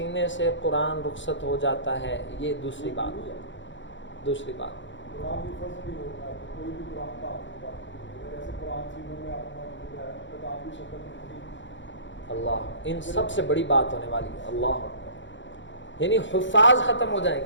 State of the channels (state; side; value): late; right; 0.54 ms